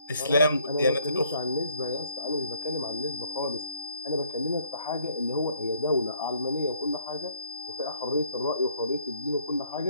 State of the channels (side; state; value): both; inverted; correlation -0.64